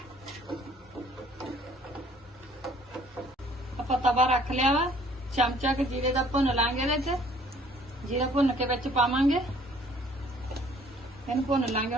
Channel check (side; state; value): both; normal; correlation 0.58